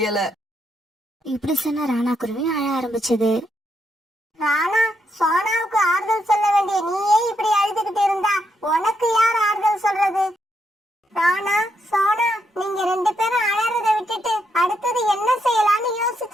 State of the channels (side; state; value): both; normal; correlation 0.79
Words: இப்படி சொன்ன ராணா குருவி அழ ஆரம்பிச்சது. ராணா, சோனாவுக்கு ஆறுதல் சொல்ல வேண்டிய நீயே இப்படி அழுதுகிட்டு இருந்தா உனக்கு யார் ஆறுதல் சொல்றது? ராணா, சோனா, நீங்க 2 பேரும் அழறத விட்டுட்டு அடுத்தது என்ன செய்யலாம்னு